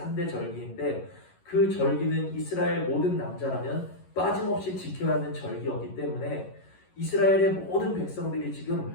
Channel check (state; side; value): late; right; 11 ms